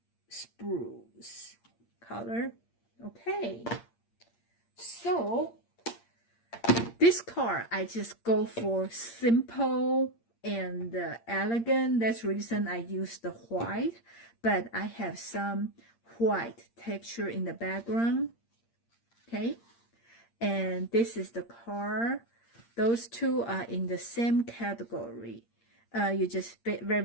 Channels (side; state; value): right; late; 8.7 ms